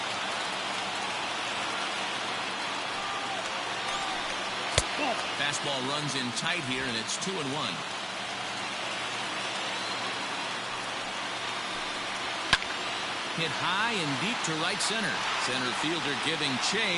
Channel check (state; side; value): identical; both; correlation 1.00